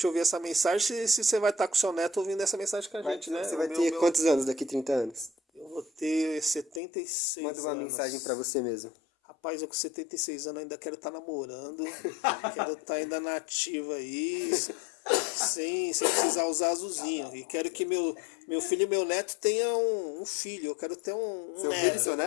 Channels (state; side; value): drops out; right; at 6.8 s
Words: ouvir essa mensagem, se você vai estar com o seu neto ouvindo essa mensagem com a gente, né? Você vai ter quantos anos daqui 30 anos? Eu vou ter 76 Manda uma anos. mensagem para você mesmo. Rapaz, eu com 76 anos ainda quero estar namorando, quero estar ainda na ativa aí, sem precisar usar azulzinho. E quero que meu filho e meu neto tenham um filho, eu quero ter um Seu neto. filho e seu